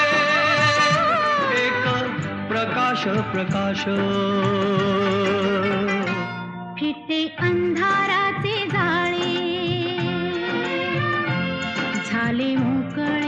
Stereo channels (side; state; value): both; identical; correlation 1.00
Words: प्रकाश प्रकाश, फिटे अंधाराचे जाळे, झाले